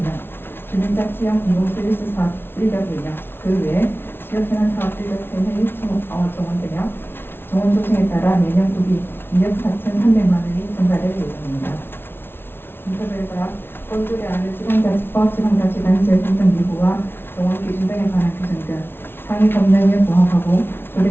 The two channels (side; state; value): right; late; 0.11 ms